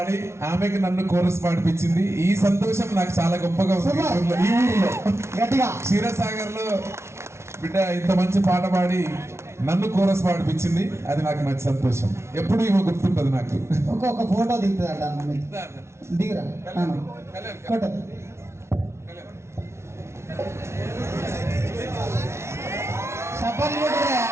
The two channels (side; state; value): left; late; 0.13 ms